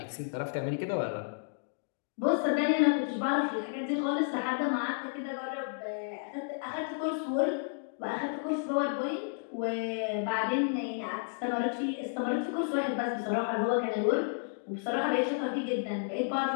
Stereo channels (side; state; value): right; silent; digital silence